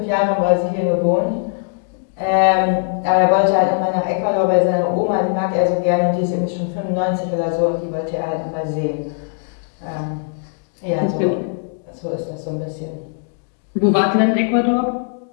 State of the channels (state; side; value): silent; right; digital silence